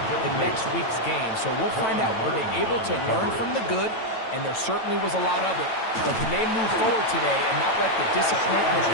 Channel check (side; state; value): right; late; 9.0 ms